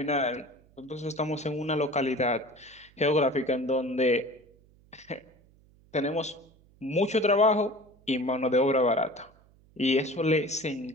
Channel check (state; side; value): noise; right; hum, 29 dB below the sound